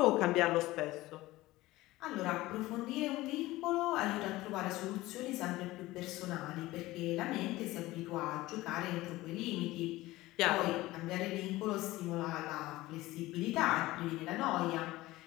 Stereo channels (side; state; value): right; quieter; 18.3 dB